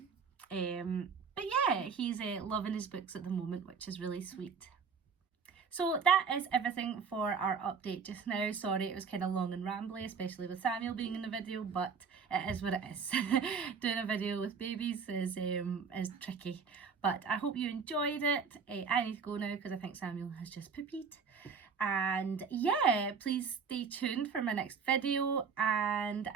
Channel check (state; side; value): quieter; left; 5.9 dB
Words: But yeah, he's loving his books at the moment, which is really sweet. So that is everything for our update just now. Sorry it was kind of long and rambly, especially with Samuel being in the video, but it is what it is. Doing a video with babies is tricky. But I hope you enjoyed it. I need to go now because I think Samuel has just poopied. And yeah, please stay tuned for my next video and